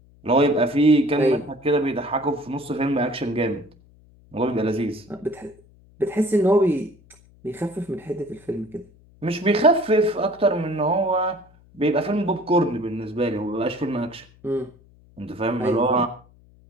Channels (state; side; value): noise; left; hum, 28 dB below the sound